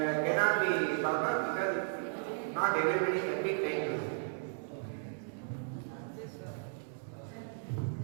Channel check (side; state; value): left; silent; digital silence